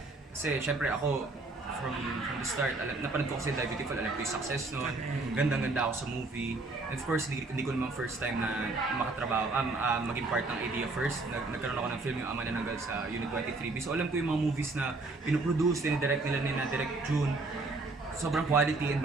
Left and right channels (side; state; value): left; quieter; 3.4 dB